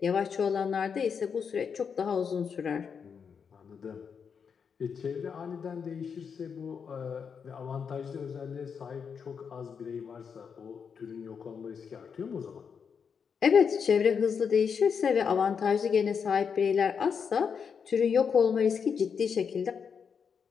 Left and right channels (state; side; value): quieter; right; 6.5 dB